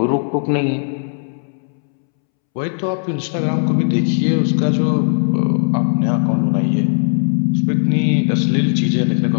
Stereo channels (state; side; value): silent; right; 68 dB below the other